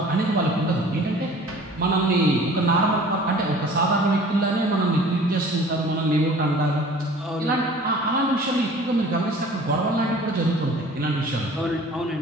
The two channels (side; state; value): both; normal; correlation 0.47